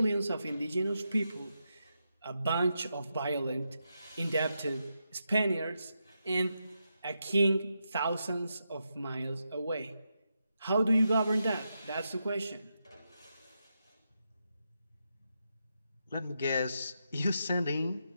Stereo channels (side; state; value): both; inverted; correlation -0.85